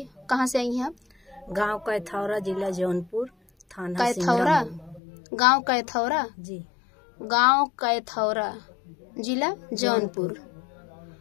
कहाँ से आई हैं आप? गांव कैथौरा, जिला जौनपुर, थाना कैथौरा। गांव कैथौरा जी। गांव कैथौरा, जिला जौनपुर,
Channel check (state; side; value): drops out; right; at 5.0 s